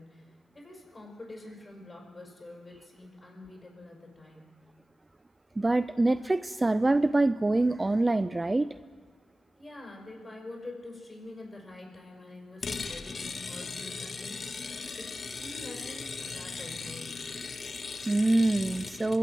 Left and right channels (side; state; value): both; normal; correlation 0.98